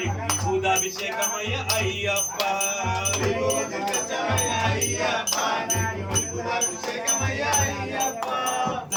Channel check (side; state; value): both; identical; correlation 1.00